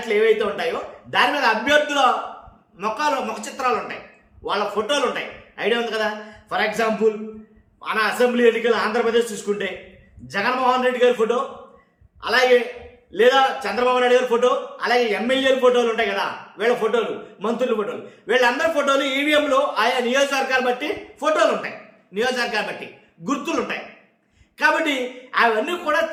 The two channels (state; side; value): identical; both; correlation 1.00